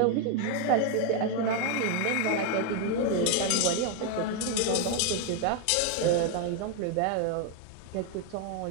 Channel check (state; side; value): different; both; correlation 0.01